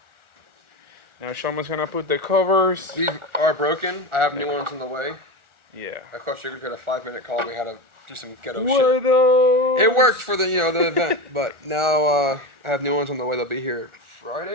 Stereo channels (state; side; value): late; left; 1.4 ms